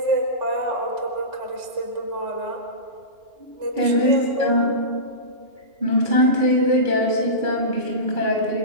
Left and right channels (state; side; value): late; left; 2.9 ms